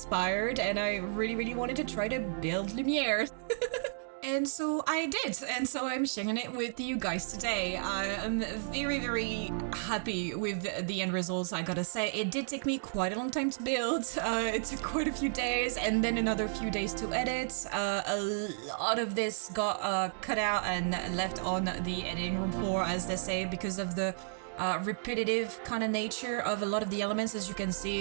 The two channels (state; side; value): silent; left; digital silence